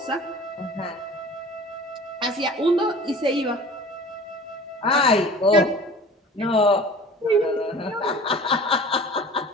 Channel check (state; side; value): normal; both; correlation 0.42